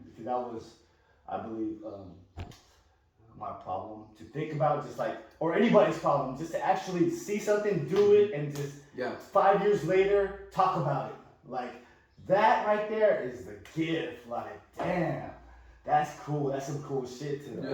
Because that was, I believe, my problem to think about, just like, or anybody's problem, just to actually see something, do it, and just 5 years later talk about it. Like that right there is the gift. Like, damn. That's cool. That's some cool shit to do.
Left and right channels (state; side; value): identical; both; correlation 1.00